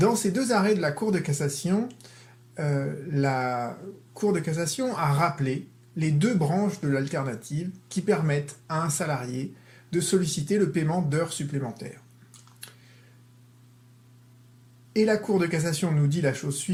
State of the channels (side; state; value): both; identical; correlation 1.00